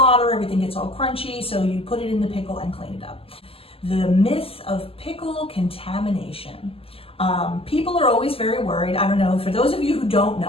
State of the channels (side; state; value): right; late; 0.27 ms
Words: everything gets all crunchy, so you put it in the pickle and clean it up. The myth of pickle contamination. People are always very worried. I don't know, for those of you who don't